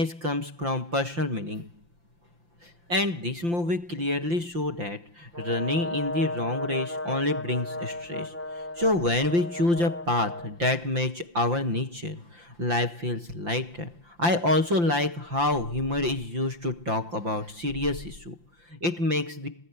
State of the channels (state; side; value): late; left; 5.8 ms